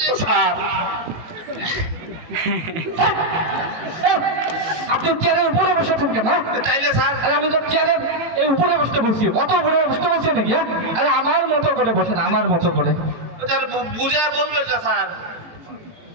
যে স্যার আপনি চেয়ারের উপরে বসে থাকেন কেন? হ্যাঁ? তাইলে স্যার আরে আমি তো চেয়ারের এই উপরে বসতে বলছি, অত উপরে বসতে বলছি নাকি? হ্যাঁ, আরে আমার মতো করে বসেন, আমার মতো করে। স্যার বুঝে বলবেন না স্যার?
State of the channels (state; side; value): late; left; 18 ms